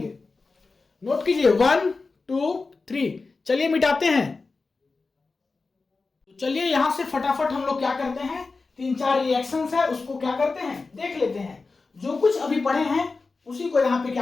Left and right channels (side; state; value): right; quieter; 4.0 dB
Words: नोट कीजिए 1 2 3। चलिए मिटाते हैं। तो चलिए यहां से फटाफट हम लोग क्या करते हैं, 3-4 रिएक्शंस है उसको क्या करते हैं, देख लेते हैं। जो कुछ अभी पढ़े हैं उसी को यहाँ पे